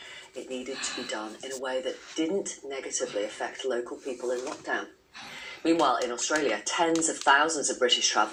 it needed to be done in a way that didn't negatively affect local people in lockdown. Meanwhile, in Australia, tens of thousands of British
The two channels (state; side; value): identical; both; correlation 1.00